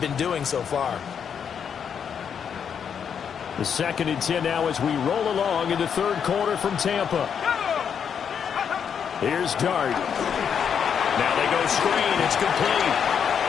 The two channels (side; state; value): right; quieter; 7.5 dB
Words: been doing so far. The 2nd and 10 now as we roll along in the third quarter from Tampa. Here's Dart. Now they go screen. It's complete.